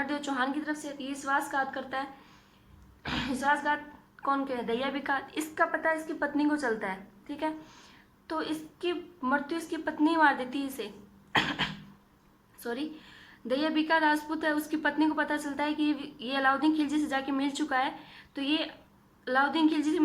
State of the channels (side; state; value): both; identical; correlation 1.00